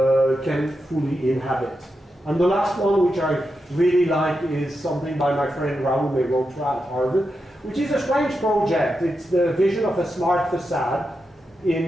fully inhabit. And the last one, which I really like, is something by my friend Raoul Mehrotra at Harvard, which is a strange project. It's the vision of a smart facade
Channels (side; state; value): both; normal; correlation 0.87